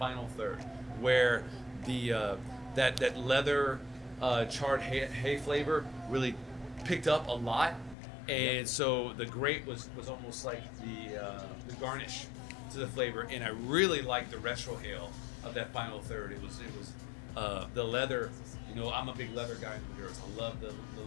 third, where the that leather charred hay flavor really picked up a lot. And so the grape was almost like the garnish to the flavor, and I really liked the retrohale of that final third. It was the leather. You know, I'm a big leather guy in the Maduros. I love the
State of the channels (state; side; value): drops out; right; at 8.0 s